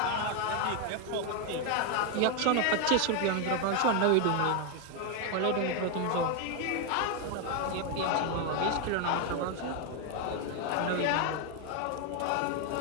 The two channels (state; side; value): different; both; correlation 0.01